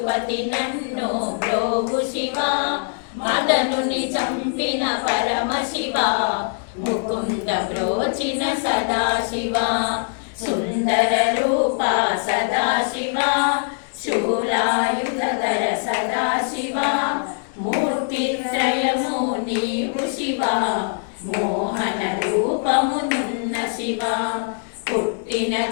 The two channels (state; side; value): silent; right; 64 dB below the other